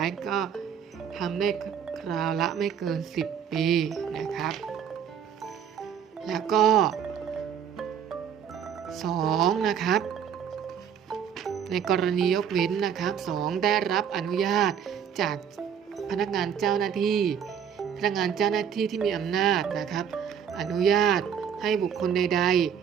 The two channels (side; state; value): left; quieter; 8.0 dB